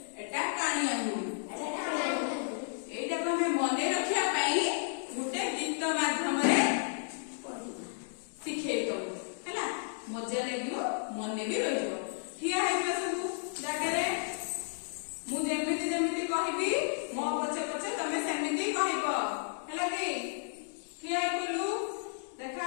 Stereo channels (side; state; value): right; silent; digital silence